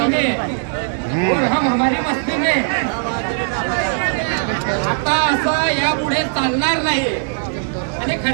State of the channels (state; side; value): silent; left; digital silence